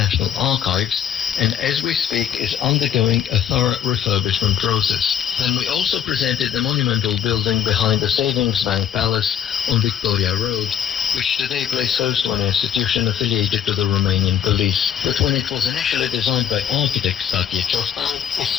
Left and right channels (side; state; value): right; quieter; 9.3 dB